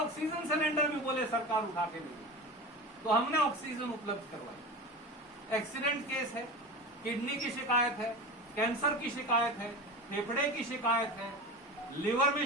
सिलेंडर भी बोले सरकार उठा के देगी। तो हमने ऑक्सीजन उपलब्ध करवाई। एक्सीडेंट केस है, किडनी की शिकायत है, कैंसर की शिकायत है, फेफड़े की शिकायत है, लिवर में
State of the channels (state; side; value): normal; both; correlation 0.29